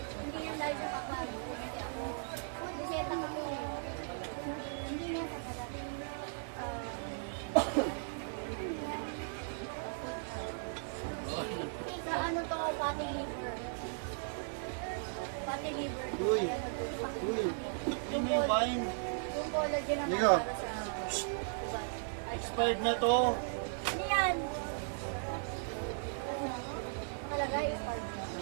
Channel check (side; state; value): left; silent; digital silence